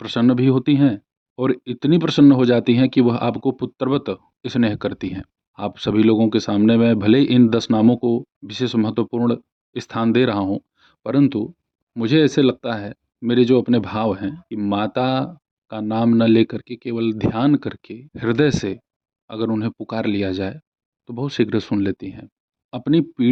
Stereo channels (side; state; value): both; identical; correlation 1.00